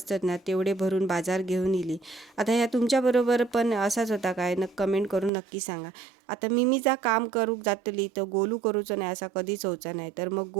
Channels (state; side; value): drops out; left; at 5.3 s